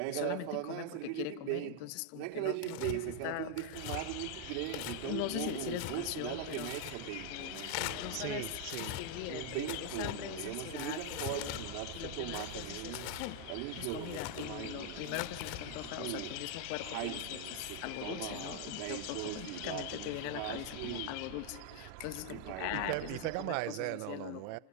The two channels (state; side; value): different; both; correlation 0.00